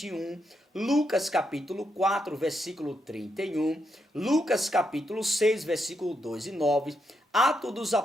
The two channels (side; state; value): both; normal; correlation 0.81